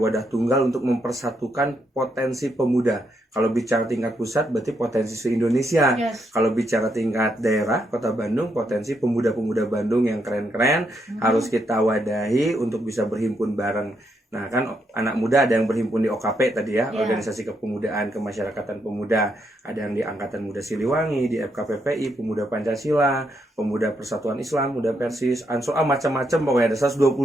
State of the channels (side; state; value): both; normal; correlation 0.78